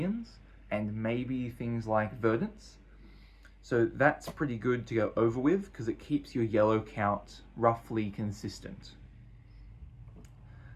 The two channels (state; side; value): identical; both; correlation 1.00